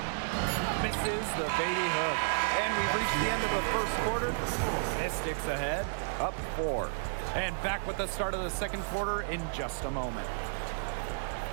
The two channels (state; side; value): silent; left; digital silence